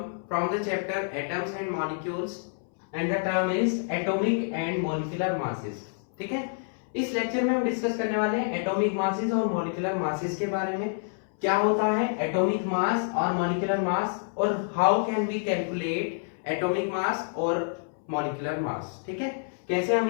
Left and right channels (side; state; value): right; silent; 59 dB below the other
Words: from the chapter atoms and molecules and the term is atomic and molecular masses. ठीक है, इस lecture में हम discuss करने वाले हैं atomic masses और molecular masses के बारे में। क्या होता है एटॉमिक मास और मॉलिक्यूलर मास और how can we calculate atomic mass और मॉलिक्यूलर मास। ठीक है, कैसे हम